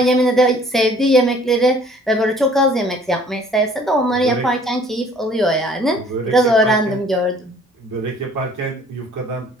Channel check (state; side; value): normal; both; correlation 0.55